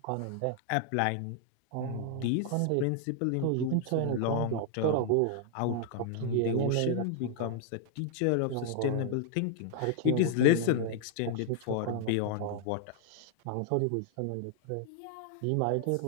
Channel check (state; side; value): different; both; correlation 0.00